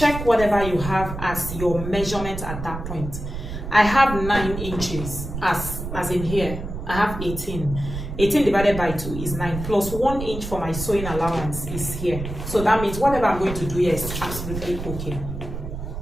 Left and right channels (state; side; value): noise; right; rumble, 7 dB below the sound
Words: whatever you have as your measurement at that point. I have 9 inches as in here. I have 18. 18 divided by 2 is 9, plus 1 inch for my sewing allowance is here. So that means whatever I'm going to do here is absolutely okay.